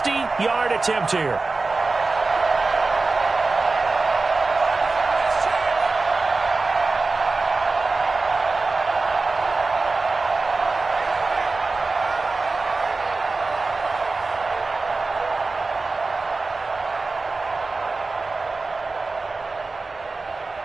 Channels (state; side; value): quieter; left; 3.7 dB